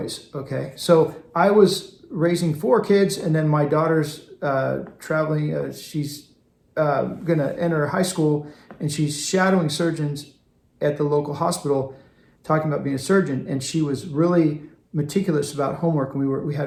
Okay. So I was raising four kids, and then my daughter's traveling. She's going to enter high school, and she's shadowing surgeons at the local hospital, talking about being a surgeon. And she was really meticulous about homework, and we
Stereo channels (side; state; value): both; identical; correlation 1.00